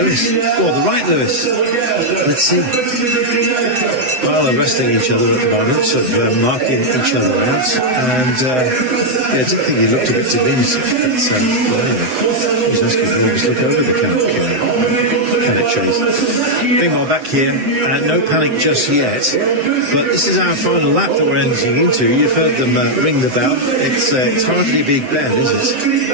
Oh, the right Lewis. Let's see. Well, they're wrestling each other at the moment, sort of marking each other out. And I did think he looked a bit diminutive, but anyway, he was asking if they just look over the Canuck chase. Meanwhile, back here, no panic just yet, but this is our final lap that we're entering into. You've heard them ring the bell. It's hardly a Big Ben, is it?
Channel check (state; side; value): late; left; 7.8 ms